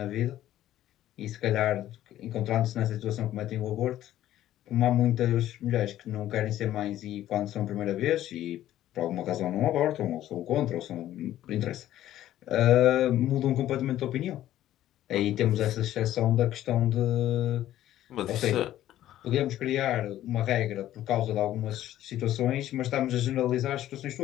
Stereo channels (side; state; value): right; quieter; 13.1 dB